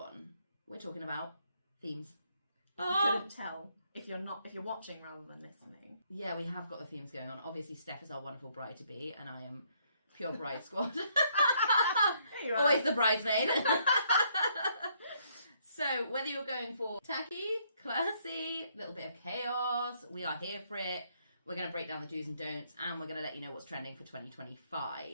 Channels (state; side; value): inverted; both; correlation -0.70